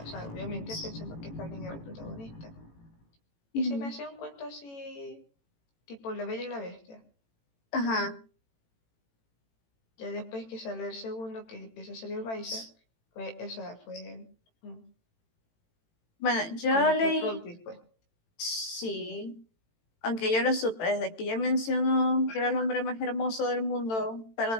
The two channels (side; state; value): right; late; 18 ms